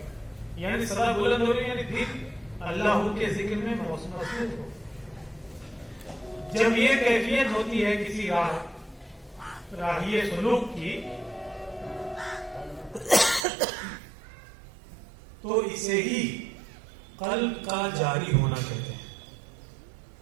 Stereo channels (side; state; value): left; drops out; at 13.5 s